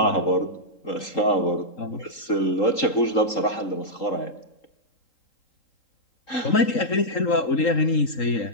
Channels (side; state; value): right; late; 3.8 ms